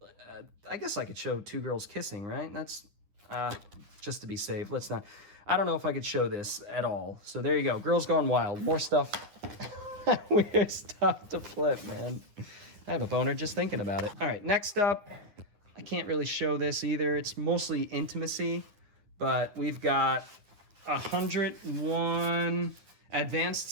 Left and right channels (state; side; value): late; left; 9.6 ms